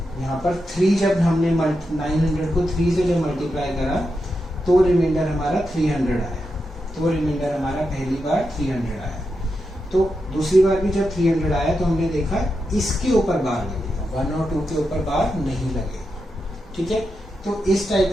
यहाँ पर 3 जब हमने 900 को 3 से जब मल्टीप्लाई करा तो रिमाइंडर हमारा 300 आया, तो रिमाइंडर हमारा पहली बार 300 आया। तो दूसरी बार भी जब 300 आया तो हमने देखा इसके ऊपर बार लगेगा, 1 और 2 के ऊपर बार नहीं लगेगा, ठीक है। तो इस टाइप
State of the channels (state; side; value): normal; both; correlation 0.87